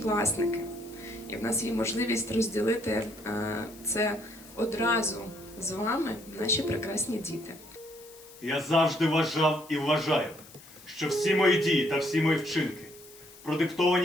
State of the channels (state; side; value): noise; left; hiss, 21 dB below the sound